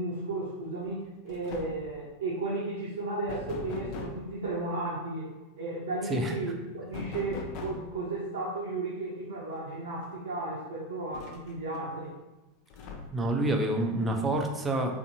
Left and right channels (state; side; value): normal; both; correlation 0.11